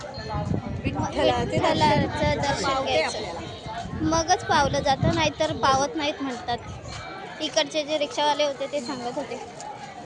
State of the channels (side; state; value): both; identical; correlation 1.00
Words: विठ्ठलाचे विठ्ठलाचं दर्शन घ्यायचं. मगच पावलं जातं, नाहीतर पावत नाहीत म्हणतात. इकडचे जे रिक्षावाले होते ते सांगत होते.